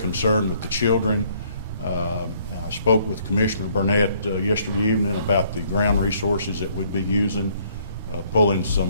with the children. I spoke with Commissioner Burnett yesterday evening about the ground resources that we'd be using, pulling some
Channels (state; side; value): inverted; both; correlation -0.64